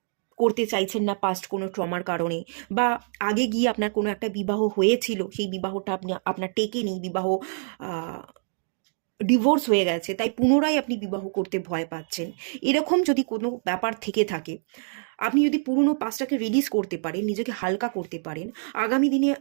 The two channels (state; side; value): silent; left; digital silence